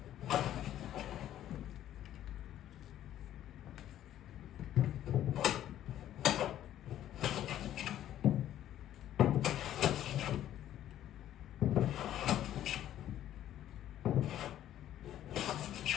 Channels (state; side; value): quieter; right; 12.0 dB